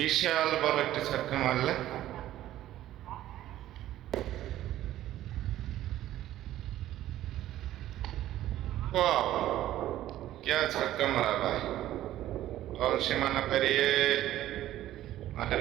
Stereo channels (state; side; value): quieter; left; 13.6 dB